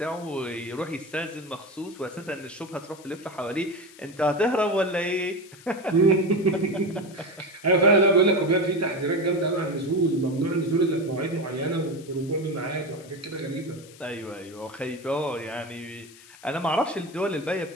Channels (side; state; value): left; noise; hiss, 21 dB below the sound